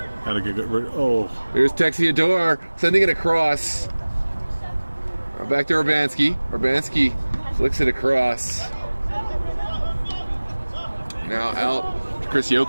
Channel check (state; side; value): inverted; both; correlation -1.00